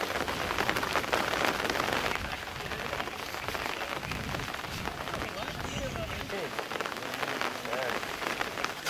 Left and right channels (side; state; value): both; identical; correlation 1.00